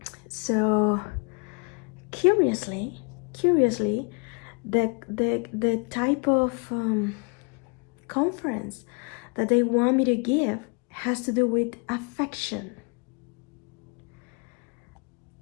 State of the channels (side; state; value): right; quieter; 35.4 dB